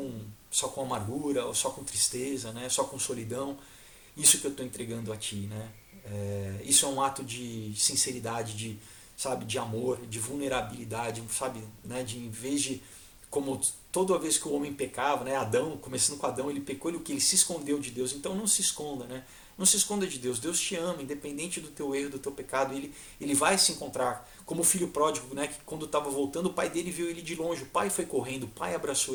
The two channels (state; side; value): identical; both; correlation 1.00